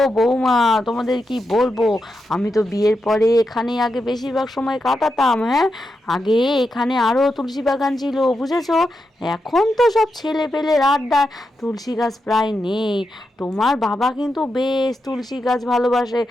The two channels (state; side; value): normal; both; correlation 0.86